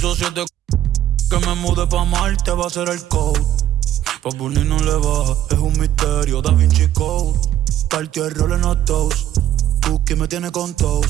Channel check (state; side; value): quieter; left; 12.3 dB